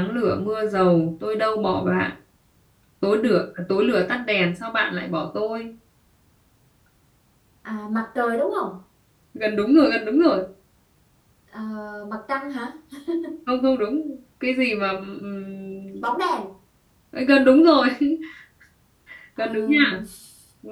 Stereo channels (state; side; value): identical; both; correlation 1.00